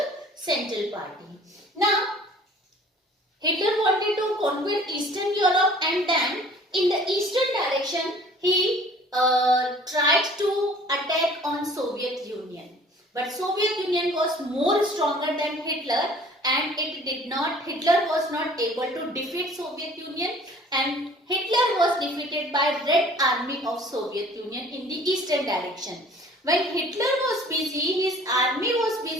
Central party. Now Hitler wanted to conquer Eastern Europe, and then in the eastern direction he tried to attack on Soviet Union. But Soviet Union was more stronger than Hitler, and Hitler was not able to defeat Soviet Union, and Hitler was defeated by Red Army of Soviet Union in the eastern direction. When Hitler was busy, his army was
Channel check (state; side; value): normal; both; correlation 0.51